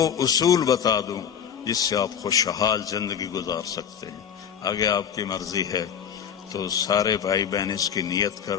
اصول بتا دوں جس سے آپ خوشحال زندگی گزار سکتے ہیں. آگے آپ کی مرضی ہے تو سارے بھائی بہن اس کی نیت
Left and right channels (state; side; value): quieter; right; 8.2 dB